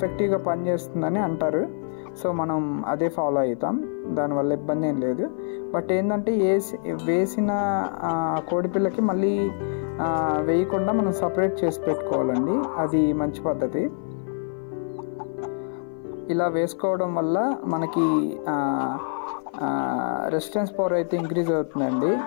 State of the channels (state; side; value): silent; right; 55 dB below the other